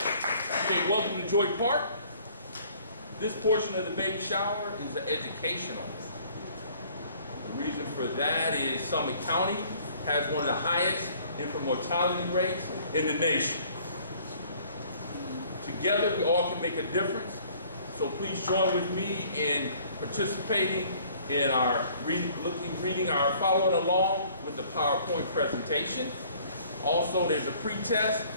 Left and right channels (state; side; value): inverted; both; correlation -0.56